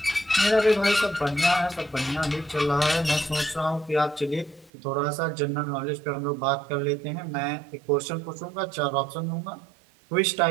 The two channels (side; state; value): left; drops out; at 4.7 s